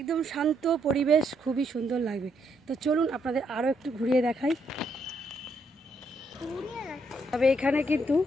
শান্ত পরিবেশ, খুবই সুন্দর লাগবে। তো চলুন আপনাদের আরও একটু ঘুরিয়ে দেখাই। তবে এখানে কিন্তু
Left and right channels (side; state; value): both; normal; correlation 0.75